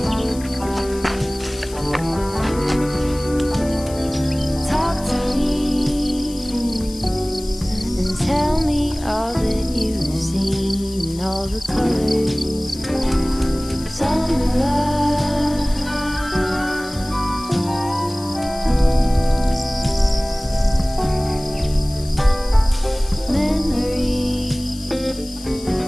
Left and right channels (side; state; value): left; noise; hiss, 17 dB below the sound